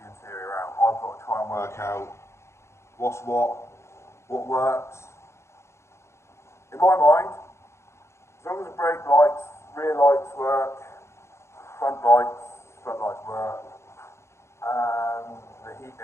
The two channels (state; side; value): late; right; 0.13 ms